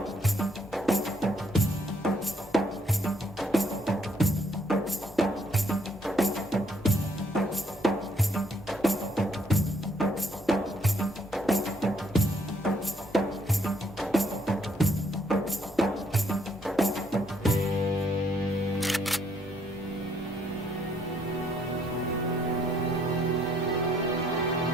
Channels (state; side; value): normal; both; correlation 0.69